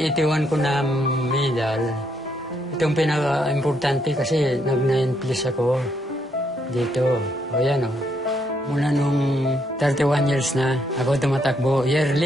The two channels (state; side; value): normal; both; correlation 0.74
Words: ko na medal, itong pinaka-importante kasi nag-9 plus ako dito. O yan Mula nung 31 years na ako tumatakbo